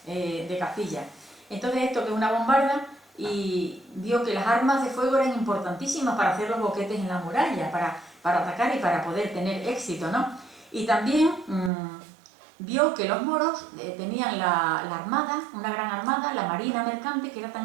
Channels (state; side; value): drops out; left; at 11.7 s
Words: de Castilla. Entonces esto que es una bombarda, y vio que las armas de fuego eran importantísimas para hacer los boquetes en la muralla, para atacar y para poder tener éxito, ¿no? Y también vio que los moros tenían la armada, una gran armada, la marina mercante, que era